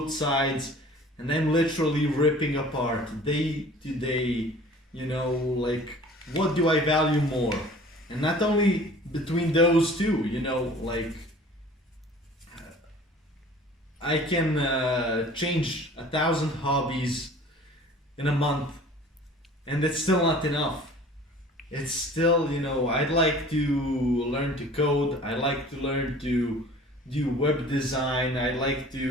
sides. And I'm literally ripping apart day to day, like, what do I value more? And not only between those two, like, I can change 1,000 hobbies in a month, and it's still not enough. It's still, I'd like to learn to code, I like to learn to do web design, I like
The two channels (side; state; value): both; normal; correlation 0.47